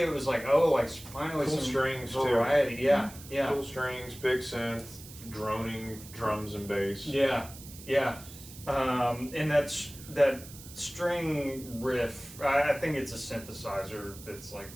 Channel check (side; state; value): right; noise; hiss, 16 dB below the sound